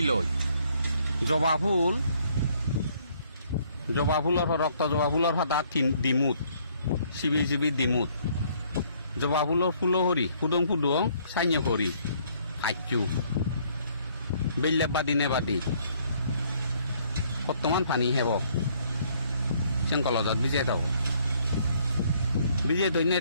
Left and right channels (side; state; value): both; inverted; correlation -0.64